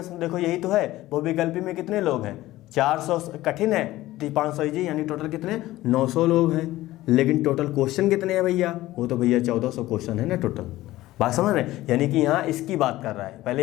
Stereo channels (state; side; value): quieter; right; 16.5 dB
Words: देखो यही तो है, बहुविकल्पी में कितने लोग हैं, 400 कठिन है, 500 इजी, यानी टोटल कितने 900 लोग हैं। लेकिन टोटल क्वेश्चन कितने हैं भैया, वो तो भैया 1400 क्वेश्चन है ना टोटल। बात समझ रहे हैं, यानी कि यहाँ इसकी बात कर रहा है, पहले